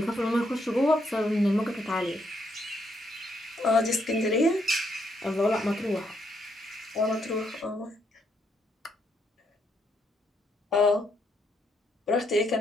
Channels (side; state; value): both; normal; correlation 0.75